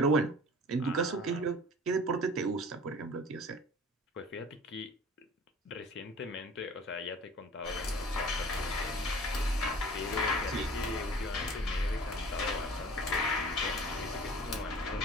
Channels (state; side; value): normal; both; correlation 0.45